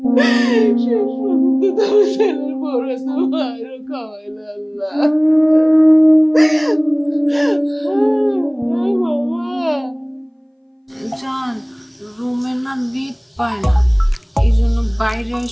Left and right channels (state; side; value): identical; both; correlation 1.00